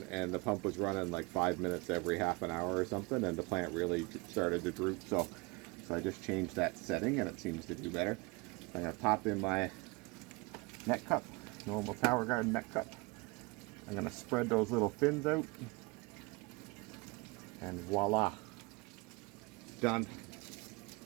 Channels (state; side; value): quieter; left; 26.8 dB